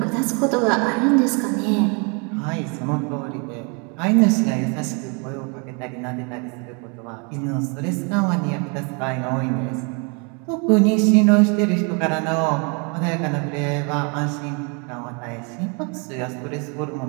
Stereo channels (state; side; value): quieter; left; 34.3 dB